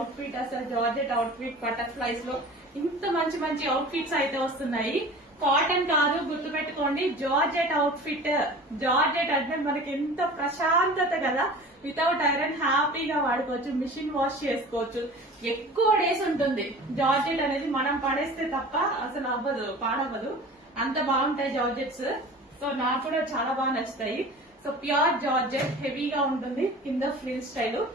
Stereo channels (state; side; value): normal; both; correlation 0.40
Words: ఫిట్ అసలు, జార్జెట్ అవుట్ ఫిట్ బటర్ఫ్లైస్ లో ఇంత మంచి మంచి అవుట్ ఫిట్స్ అయితే వస్తున్నాయి. కాటన్ కాదు, గుర్తుపెట్టుకోండి, జార్జెట్ అవుట్ ఫిట్. జార్జెట్ అంటే మనకి ఎంత ప్రశాంతత కదా, వితౌట్ ఐరన్ హ్యాపీగా వాడుకోవచ్చు, మిషన్ వాష్ చేసుకోవచ్చు. ఎక్కువ డేస్ ఉంటుంది జార్జెట్ అనేది. మనం పడేస్తే తప్ప అసలు అవ్వదు, పాడవ్వదు, అంత బాగుంటాయి జార్జెట్స్. సో నాకు కూడా చాలా బాగా నచ్చుతాయి. సో ప్యూర్ జార్జెట్, హెవీగా ఉంటుంది. కింద ఫ్రిల్ స్టైల్